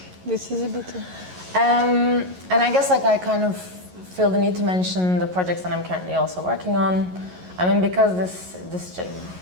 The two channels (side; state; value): left; late; 11 ms